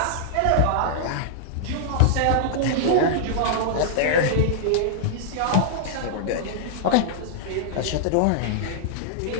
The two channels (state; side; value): different; both; correlation -0.01